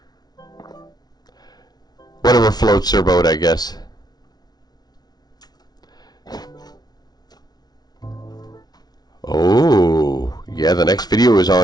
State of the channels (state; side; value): late; right; 0.19 ms